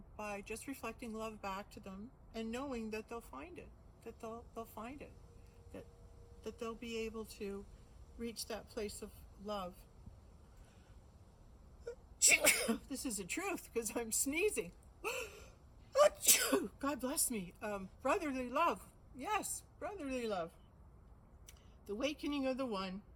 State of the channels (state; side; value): identical; both; correlation 1.00